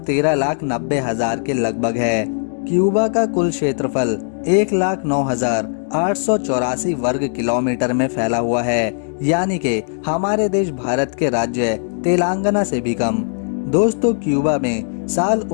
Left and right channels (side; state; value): right; silent; digital silence